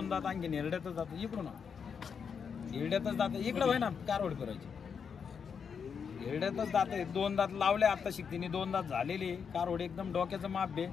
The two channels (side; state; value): right; quieter; 6.5 dB